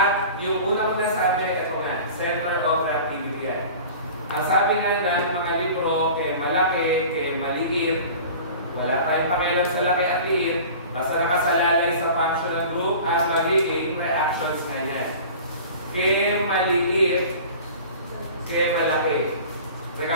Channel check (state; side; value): inverted; both; correlation -0.40